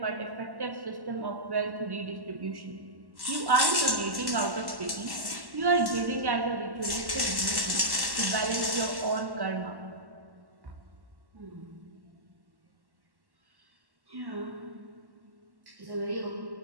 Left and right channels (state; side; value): late; left; 1.1 ms